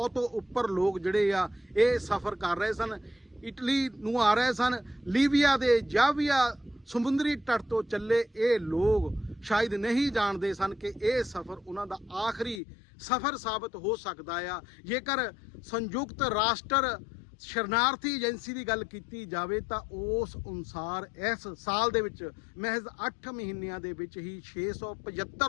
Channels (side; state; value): right; drops out; at 12.6 s